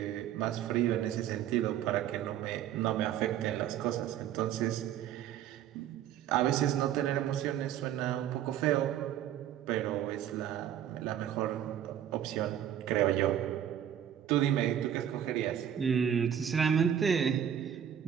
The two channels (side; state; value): left; quieter; 10.1 dB